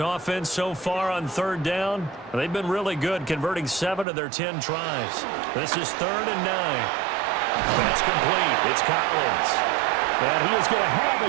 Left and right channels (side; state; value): left; drops out; at 4.0 s